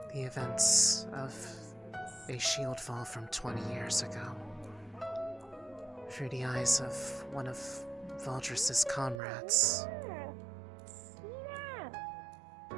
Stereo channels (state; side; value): drops out; left; at 9.2 s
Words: the events of a shield fall from 20 years ago through the eyes of one of Valdris's comrades.